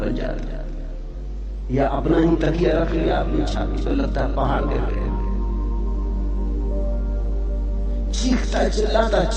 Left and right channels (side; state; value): both; identical; correlation 1.00